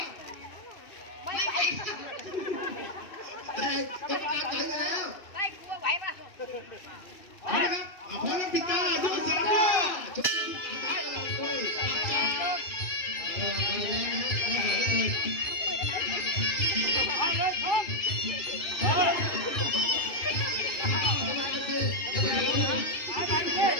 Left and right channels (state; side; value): late; right; 2.6 ms